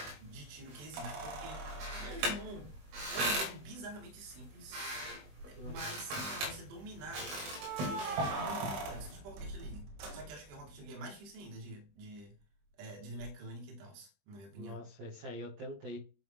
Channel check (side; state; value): left; late; 20 ms